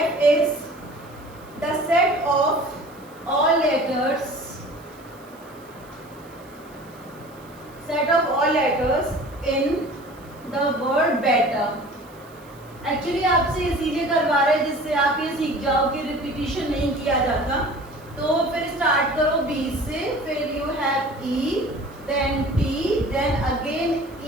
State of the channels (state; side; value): noise; right; hiss, 27 dB below the sound